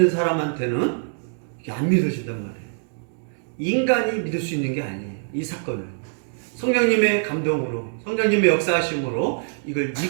사람한테는 이게 안 믿어진단 말이에요. 인간이 믿을 수 있는 게 아니에요. 이 사건을 성령님의 감동으로 성령님의 역사하심으로 이걸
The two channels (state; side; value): silent; left; digital silence